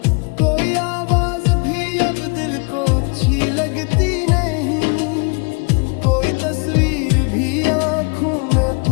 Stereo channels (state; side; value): quieter; right; 34.5 dB